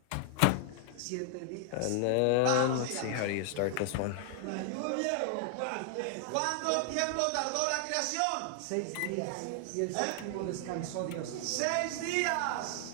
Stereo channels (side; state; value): both; different; correlation 0.00